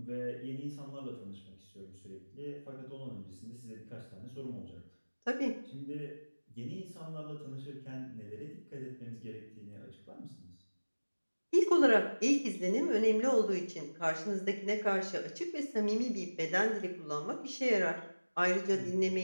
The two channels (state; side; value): inverted; both; correlation -1.00